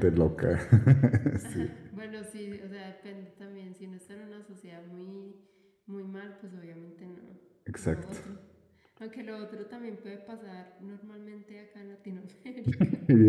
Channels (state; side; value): identical; both; correlation 1.00